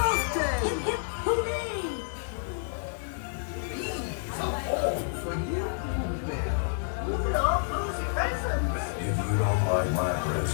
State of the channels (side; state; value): right; silent; digital silence